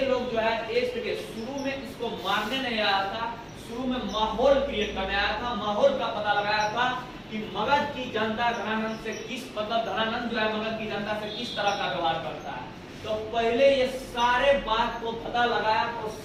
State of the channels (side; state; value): both; identical; correlation 1.00